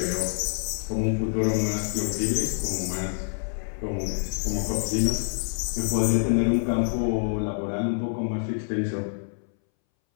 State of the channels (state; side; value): silent; right; 61 dB below the other